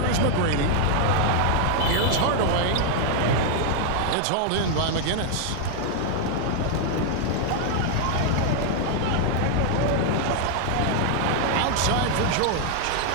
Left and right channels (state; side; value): different; both; correlation 0.00